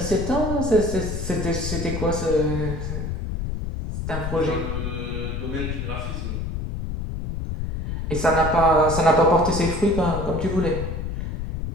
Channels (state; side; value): noise; left; rumble, 4 dB below the sound